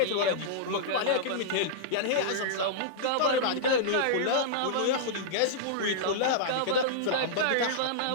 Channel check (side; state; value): both; different; correlation -0.03